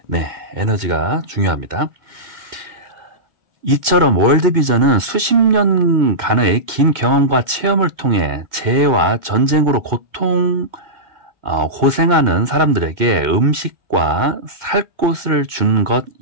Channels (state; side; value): late; left; 2.2 ms